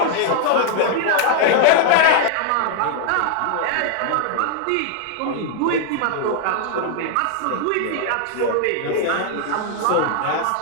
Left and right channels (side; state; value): both; different; correlation 0.00